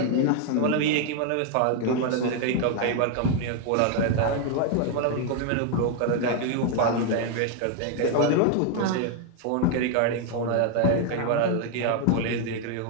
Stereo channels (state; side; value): different; both; correlation 0.00